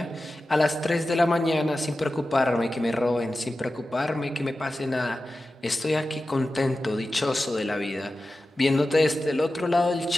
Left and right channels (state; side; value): normal; both; correlation 0.94